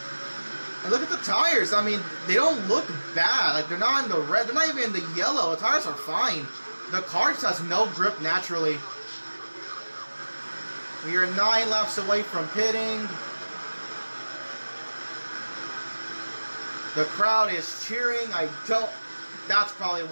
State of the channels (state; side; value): inverted; both; correlation -1.00